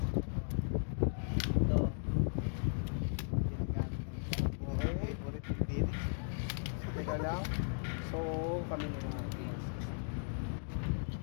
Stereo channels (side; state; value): right; silent; digital silence